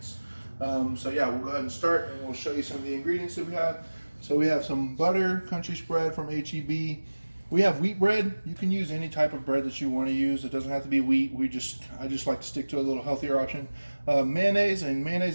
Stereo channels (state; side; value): inverted; both; correlation -1.00